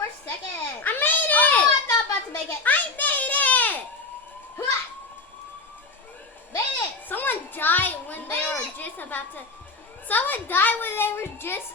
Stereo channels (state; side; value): quieter; right; 3.6 dB